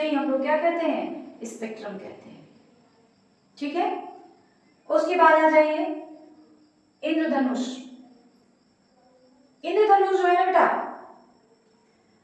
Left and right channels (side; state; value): both; identical; correlation 1.00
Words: ही हम लोग क्या कहते हैं? स्पेक्ट्रम कहते हैं। ठीक है, उसके बाद आ जाइए इंद्रधनुष। इंद्रधनुष जो है ना बेटा